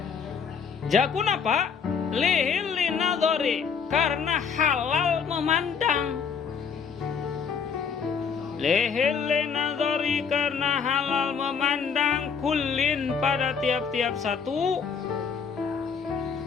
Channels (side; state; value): right; quieter; 6.3 dB